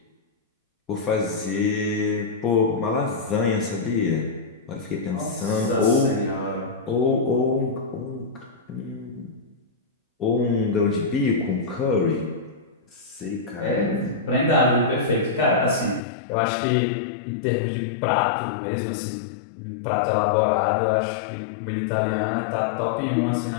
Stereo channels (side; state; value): right; drops out; at 16.0 s